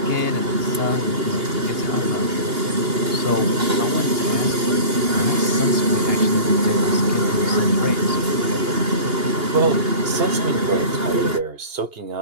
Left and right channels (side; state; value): left; late; 2.8 ms